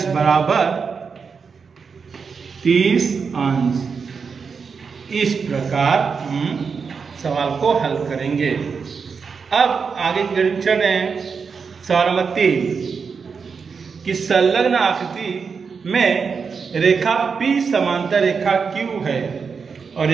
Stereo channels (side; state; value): left; quieter; 5.6 dB